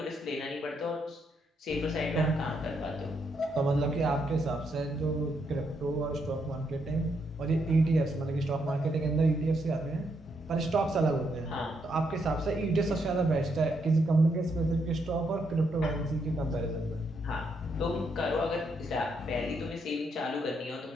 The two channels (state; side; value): normal; both; correlation 0.77